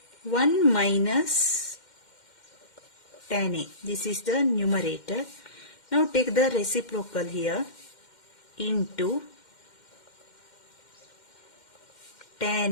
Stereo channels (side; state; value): right; late; 2.1 ms